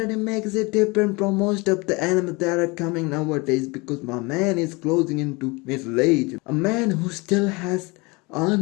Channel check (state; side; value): quieter; right; 26.1 dB